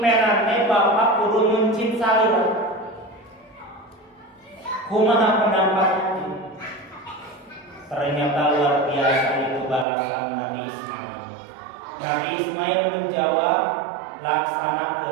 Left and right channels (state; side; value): drops out; left; at 9.9 s